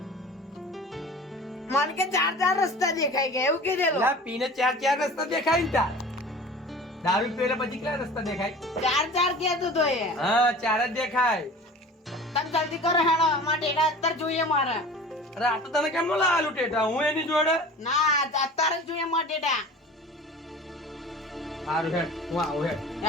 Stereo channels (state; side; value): normal; both; correlation 0.40